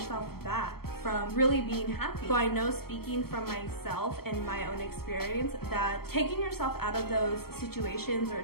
back from really being happy. So I know, speaking from myself and my own experience, that taking yourself out of those situations or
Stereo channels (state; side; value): late; right; 0.95 ms